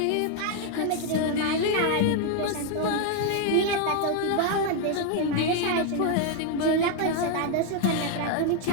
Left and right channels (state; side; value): different; both; correlation 0.01